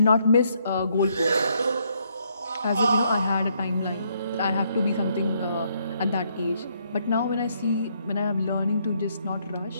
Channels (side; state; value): both; inverted; correlation -0.72